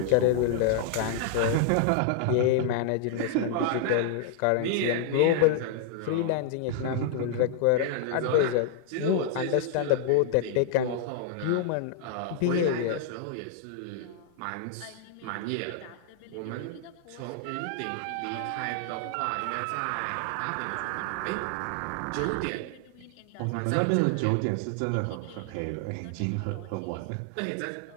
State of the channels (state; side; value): different; both; correlation -0.01